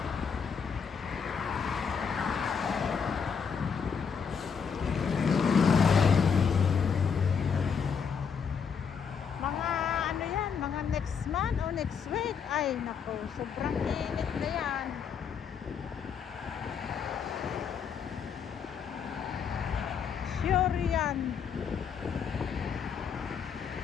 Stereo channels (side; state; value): right; quieter; 6.6 dB